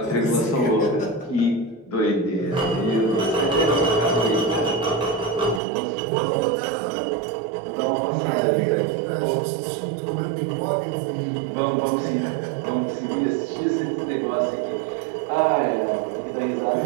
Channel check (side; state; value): left; drops out; at 5.6 s